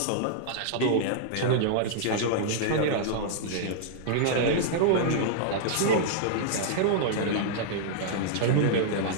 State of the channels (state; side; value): different; both; correlation -0.01